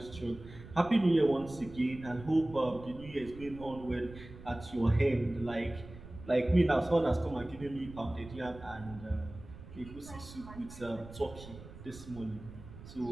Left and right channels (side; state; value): right; noise; rumble, 16 dB below the sound